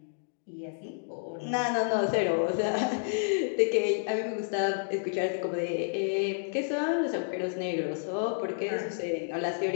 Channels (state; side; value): silent; right; digital silence